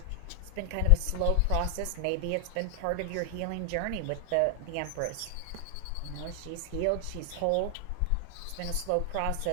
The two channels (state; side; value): different; both; correlation 0.00